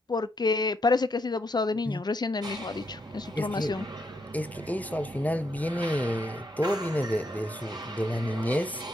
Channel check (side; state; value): both; normal; correlation 0.77